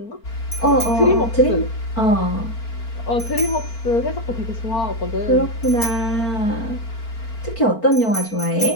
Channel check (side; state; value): right; late; 4.4 ms